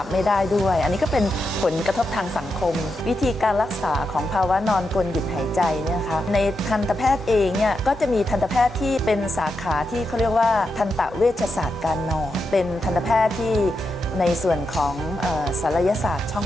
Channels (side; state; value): both; normal; correlation 0.86